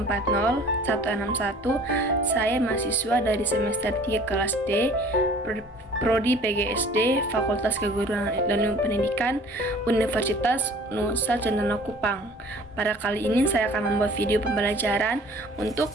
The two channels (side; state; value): both; normal; correlation 0.49